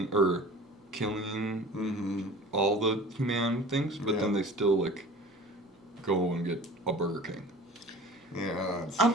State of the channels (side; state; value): both; normal; correlation 0.43